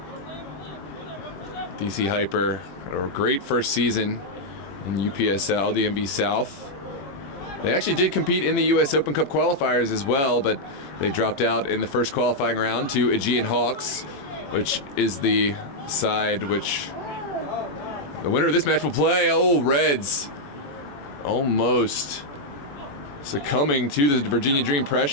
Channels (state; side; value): late; right; 21 ms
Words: DC Hyper had a great first season in UPSL, DMV South. They actually did compete in the US Open Cup qualifiers as well, but they dropped out in the first qualifying round to Aegean Hawks, which is the side which the winner of this match will play. Oh, Reds almost succumbing to the Virginia Dream